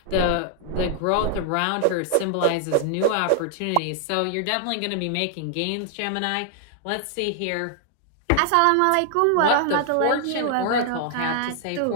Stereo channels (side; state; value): both; different; correlation 0.00